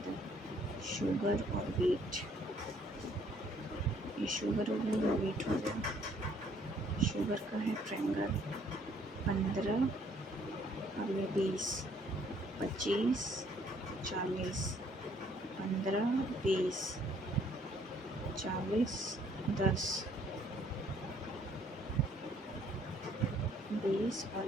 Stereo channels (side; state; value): both; normal; correlation 0.63